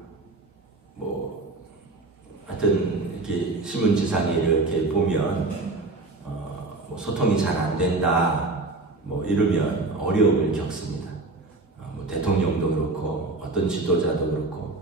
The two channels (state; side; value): quieter; left; 3.3 dB